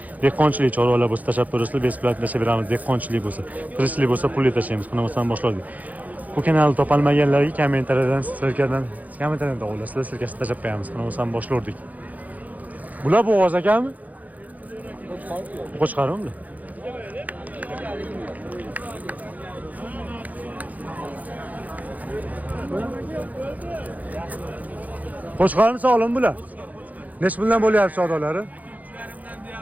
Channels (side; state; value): left; late; 0.078 ms